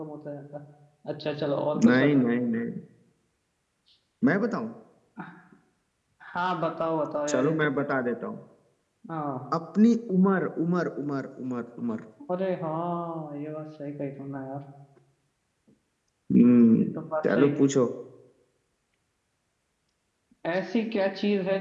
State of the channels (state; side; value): identical; both; correlation 1.00